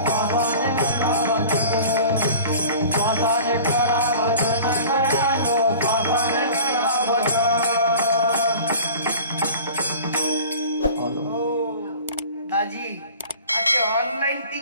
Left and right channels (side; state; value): both; inverted; correlation -0.42